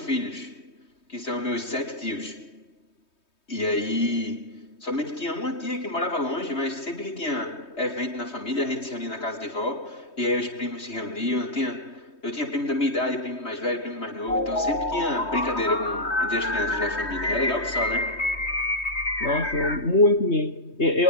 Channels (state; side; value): late; right; 3.2 ms